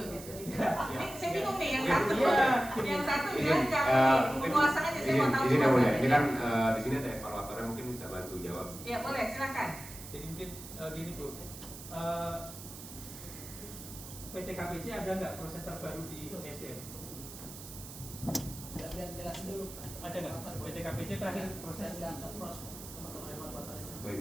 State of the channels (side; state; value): right; noise; hiss, 13 dB below the sound